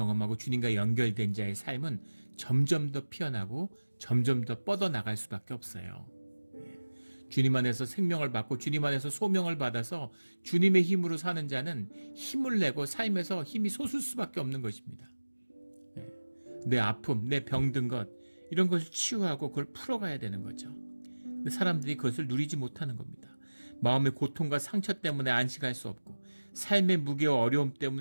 주님과 연결된 자의 삶은 점점 더 피어나고 점점 더 뻗어나갈 수밖에 없어요. 주님 안에서 생명을 받고 주님 안에서 소명을 받아서 주님의 힘으로 사는 자는 힘을 내고 삶에서 힘이 솟을 수밖에 없는 것입니다. 내 아픔, 내 병든 것 이런 것을 치유하고 그걸 풀어가야 되는 거죠. 근데 사람들이 그것을 누리지 못하는 겁니다. 마음의 고통과 상처 때문에 안식할 수 없고 삶의 무게와 어려움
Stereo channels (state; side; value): inverted; both; correlation -1.00